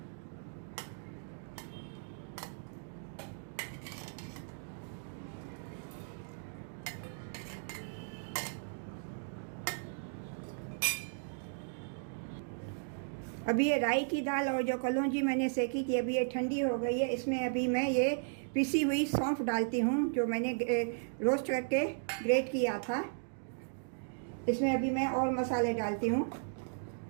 अभी ये राई की दाल और जो कलौंजी मैंने सेकी थी, अभी ये ठंडी हो गई है। इसमें अभी मैं ये पिसी हुई सौंफ डालती हूँ जो मैंने रोस्ट करके ग्रेट किया था। इसमें अभी मैं और मसाले डालती हूँ।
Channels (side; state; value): left; silent; digital silence